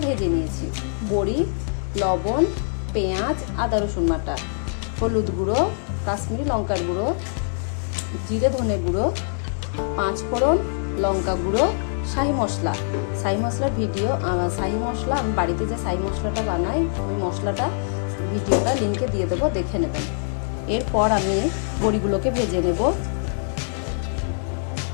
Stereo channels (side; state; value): right; silent; digital silence